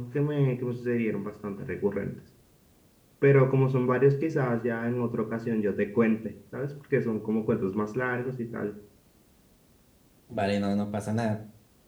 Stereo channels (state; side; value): identical; both; correlation 1.00